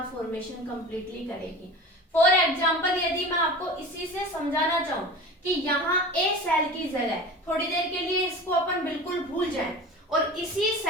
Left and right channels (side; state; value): both; normal; correlation 0.35